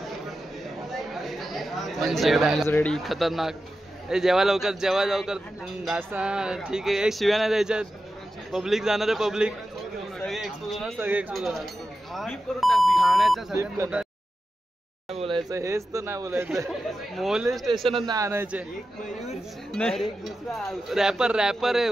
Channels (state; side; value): normal; both; correlation 0.92